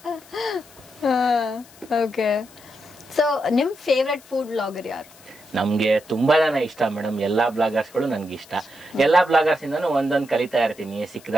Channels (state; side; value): noise; left; hiss, 24 dB below the sound